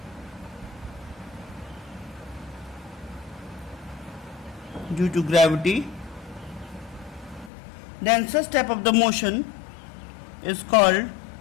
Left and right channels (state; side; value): drops out; right; at 7.5 s